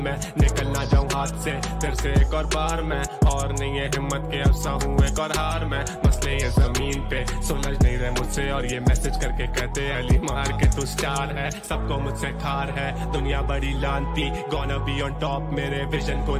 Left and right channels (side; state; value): both; identical; correlation 1.00